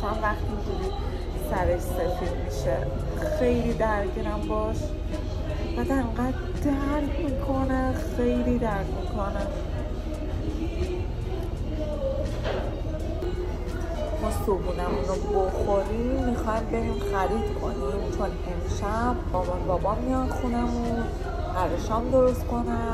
وقتی اینجوری سرش سفید میشه. خیلی درگیرم باش، بعد انقدر درد میکنه، خیلی درد میکنه. ما صبحونمون رو بخوریم میخوایم بریم خرید کنیم، چون امشب مامان بابا میان خونمون، قراره شام درست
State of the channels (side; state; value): both; identical; correlation 1.00